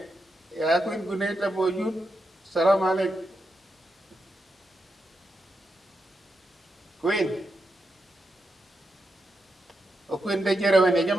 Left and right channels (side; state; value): both; normal; correlation 0.86